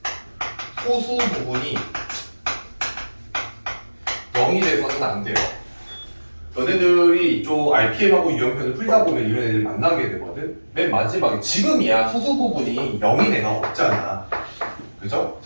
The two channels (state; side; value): inverted; both; correlation -1.00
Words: 소수 부분이 0이 돼서는 안 돼요. 너네들이 좀 RPM하고 유형편을 풀다 보면 이런 애들 만나게 되거든. 맨 마지막에 지금이야 소수 부분이 0인 애가 없잖아. 그죠?